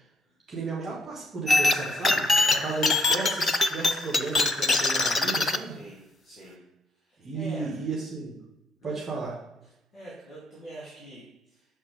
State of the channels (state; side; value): normal; both; correlation 0.72